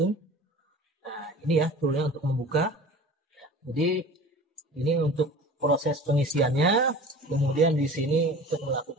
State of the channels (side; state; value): both; normal; correlation 0.40